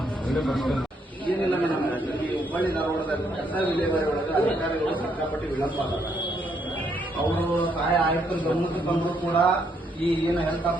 ಏನಿಲ್ಲ ಮೇಡಮ್, ಈ ಹುಬ್ಬಳ್ಳಿ ಧಾರವಾಡದಲ್ಲಿ ಕಸ ವಿಲೇವಾರಿ ಒಳಗೆ ಅಧಿಕಾರಿಗಳು ಸಿಕ್ಕಾಪಟ್ಟಿ ವಿಳಂಬ ಆಗಲ್ಲ. ಅವರು ಸಹಾಯ ಆಯುಕ್ತರ ಗಮನಕ್ಕೆ ತಂದರೂ ಕೂಡ ಈ ಏನು ಹೆಲ್ತ್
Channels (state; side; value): normal; both; correlation 0.73